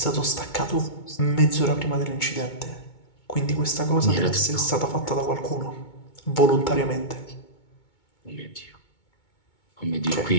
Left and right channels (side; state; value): right; late; 2.2 ms